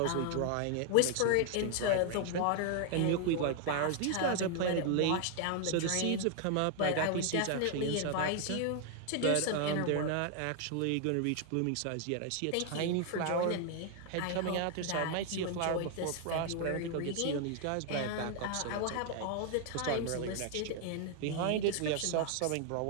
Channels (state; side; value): different; both; correlation 0.00